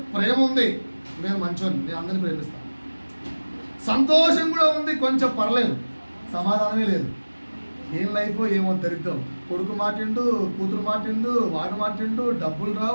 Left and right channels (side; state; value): both; inverted; correlation -1.00